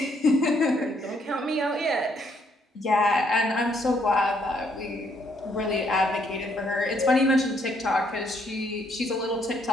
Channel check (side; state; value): both; normal; correlation 0.70